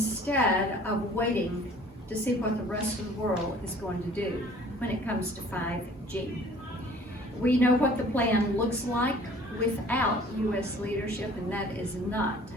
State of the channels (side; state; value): both; normal; correlation 0.52